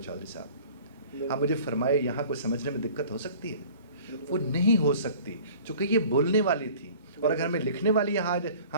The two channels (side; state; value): both; inverted; correlation -0.47